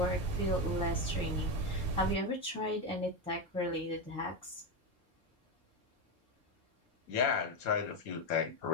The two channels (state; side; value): normal; both; correlation 0.12